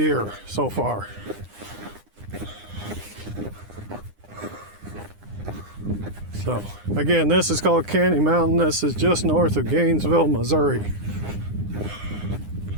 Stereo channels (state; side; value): late; left; 9.8 ms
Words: so far. So, again, this is called Candy Mountain. This is just north of Gainesville, Missouri.